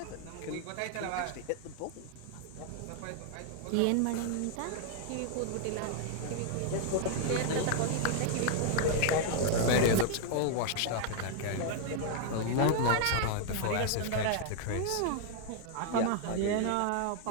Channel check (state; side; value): different; both; correlation 0.00